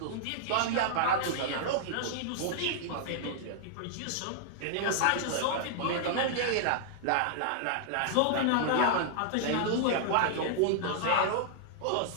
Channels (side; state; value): both; different; correlation -0.01